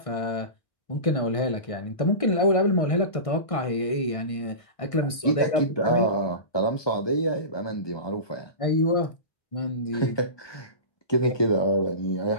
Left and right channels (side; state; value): right; late; 1.6 ms